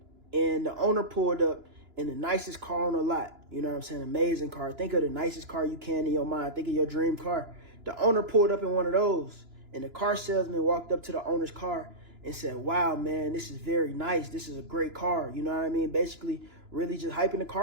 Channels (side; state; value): left; late; 2.9 ms